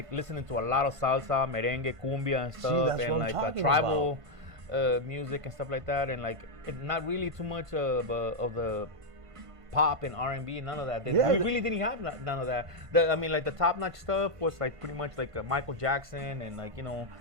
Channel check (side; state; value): left; late; 1.5 ms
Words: listening to a lot of salsa, merengue, cumbia, and stuff, that's and what I'm like talking tribal music and stuff like that, and like not really too much of the pop and R&B, none of that. Yeah, We really didn't have none of that. Like the top-notch stuff was like pretty much like Michael Jackson and like